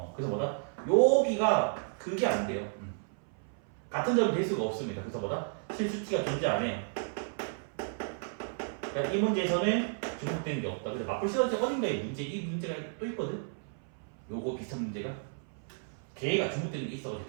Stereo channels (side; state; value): left; silent; 56 dB below the other